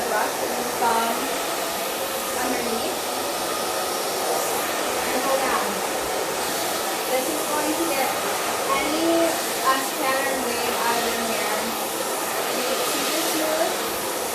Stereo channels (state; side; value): identical; both; correlation 1.00